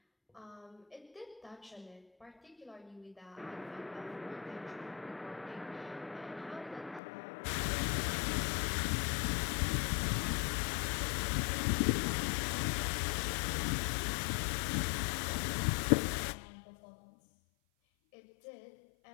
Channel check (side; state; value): right; drops out; at 7.0 s